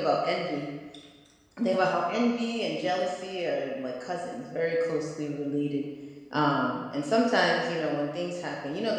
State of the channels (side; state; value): both; identical; correlation 1.00